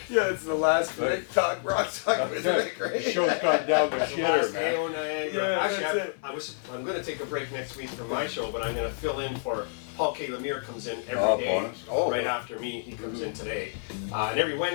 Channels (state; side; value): silent; right; 59 dB below the other